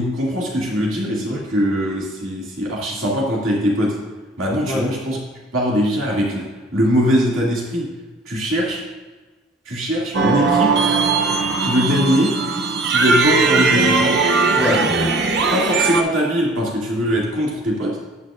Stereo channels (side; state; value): both; normal; correlation 0.51